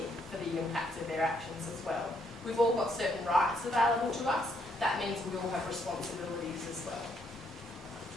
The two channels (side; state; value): both; normal; correlation 0.72